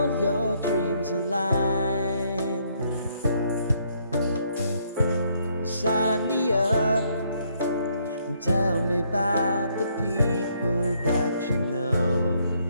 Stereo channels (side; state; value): both; inverted; correlation -0.70